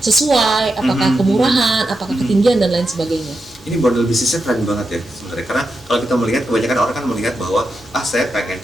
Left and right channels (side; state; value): both; normal; correlation 0.87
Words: sesuai, apakah kemurahan, apakah ketinggian dan lain sebagainya. Ini model bisnisnya keren banget ya sebenarnya. Karena kalau kita melihat, kebanyakan orang kan melihat bahwa saya pengen